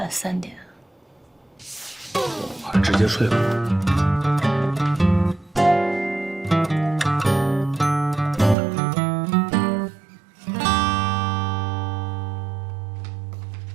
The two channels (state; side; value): drops out; left; at 8.6 s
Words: 3点。我直接睡吧。